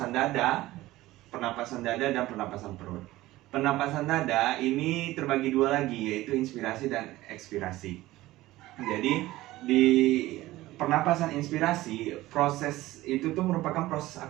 dada dan pernapasan perut. Pernapasan dada ini terbagi dua lagi, yaitu inspirasi dan ekspirasi. Jadi di pernapasan inspirasi, proses itu tuh merupakan proses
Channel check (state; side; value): quieter; left; 17.2 dB